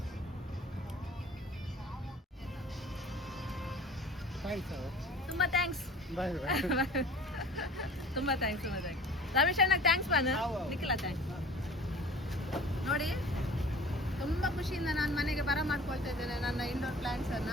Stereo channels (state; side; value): normal; both; correlation 0.45